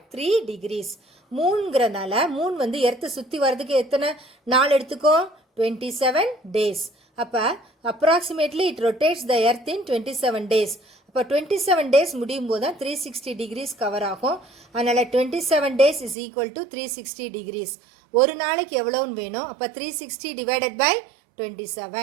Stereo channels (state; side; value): drops out; left; at 16.2 s